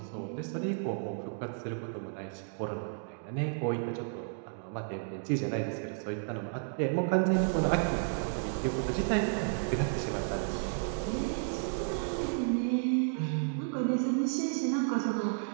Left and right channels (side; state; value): left; silent; digital silence